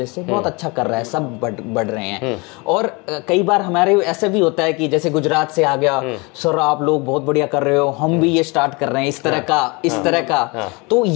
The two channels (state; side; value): quieter; right; 27.7 dB